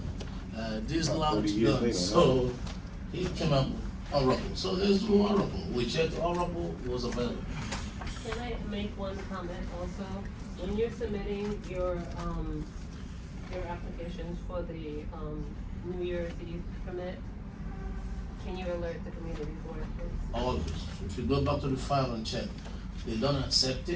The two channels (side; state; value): both; identical; correlation 1.00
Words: This About 30 lounge, years gone. later, So, he came up with Oracle. So let's do Oracle. We checked Oracle, it was available. Can I make one comment also? when you're submitting your applications for the, New Year's Eve permit, can you alert the community for it, please? Always. If you go back to the file and check, they don't accept